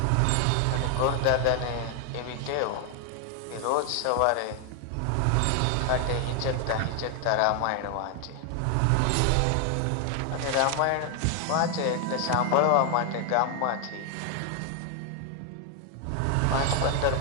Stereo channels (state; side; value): different; both; correlation 0.00